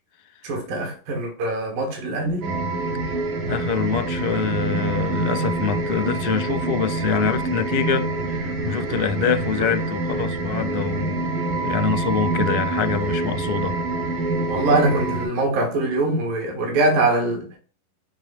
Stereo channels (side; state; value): left; late; 11 ms